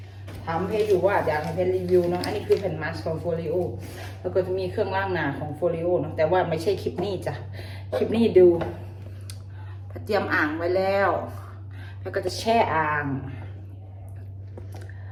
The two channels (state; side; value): identical; both; correlation 1.00